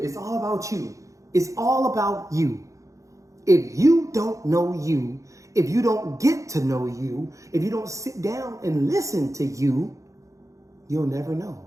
It's all about you. It's all about you. If you don't know you, if you don't get to know you, if you don't sit down and listen to you, you'll never know.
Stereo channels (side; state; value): left; late; 0.15 ms